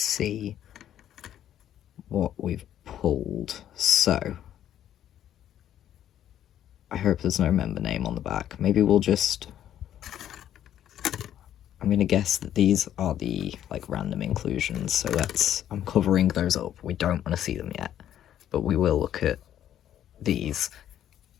what we've pulled. So I hope there's no member name on the back. Maybe we'll just... I'm going to guess that these are the, like, random inclusions, so I'm covering those up. We don't want to see them yet, but we will look at these.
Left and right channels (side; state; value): right; quieter; 11.0 dB